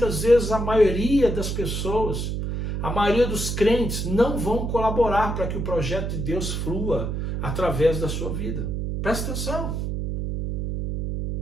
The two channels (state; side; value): noise; right; hum, 2 dB below the sound